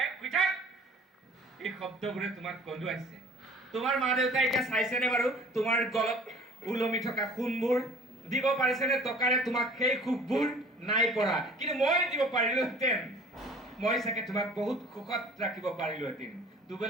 শুই থাক। এই শব্দবোৰে তোমাক কন্দুৱাইছে। তোমাৰ মা দেউতাই এতিয়া চাইছেনে বাৰু তোমাৰ গলত ওলমি থকা সোণবোৰ? দিব পাৰিছেনে টকাৰে তোমাক সেই সুখবোৰ? নাই পৰা। কিন্তু মই দিব পাৰিলোহেঁতেন। মই চাগে তোমাক বহুত সুখত ৰাখিব পাৰিলোহেঁতেন।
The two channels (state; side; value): normal; both; correlation 0.49